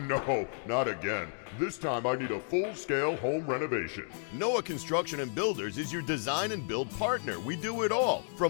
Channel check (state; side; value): silent; right; digital silence